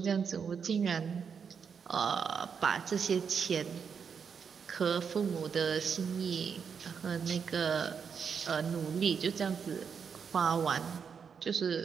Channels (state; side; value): quieter; left; 6.5 dB